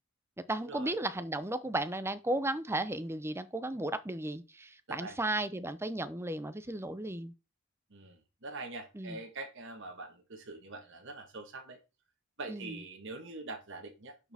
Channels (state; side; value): normal; both; correlation 0.52